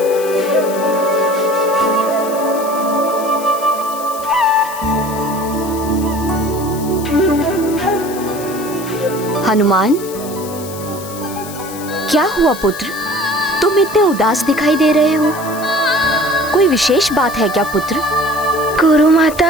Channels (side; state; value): left; noise; hiss, 14 dB below the sound